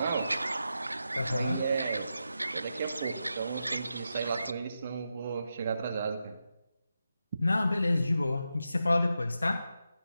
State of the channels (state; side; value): inverted; both; correlation -0.88